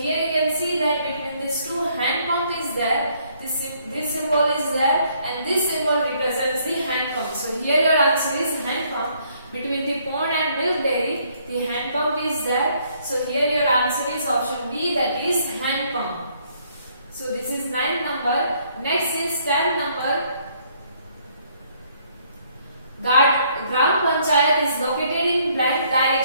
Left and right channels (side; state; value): both; inverted; correlation -0.66